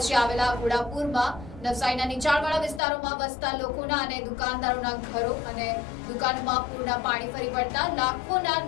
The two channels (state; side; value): drops out; right; at 2.8 s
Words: આવેલા ઘોડાપુરમાં નવસારીના નીચાણવાળા વિસ્તારોમાં વસતા લોકોના અને દુકાનદારોના ઘરો અને દુકાનોમાં પૂરના પાણી ફરી વળતા લાખોના